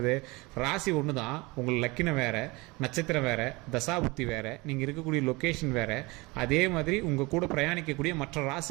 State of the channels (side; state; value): left; quieter; 24.3 dB